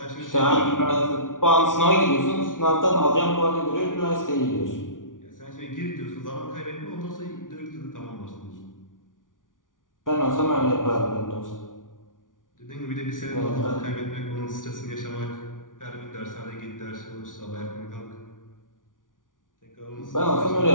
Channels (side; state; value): right; late; 0.88 ms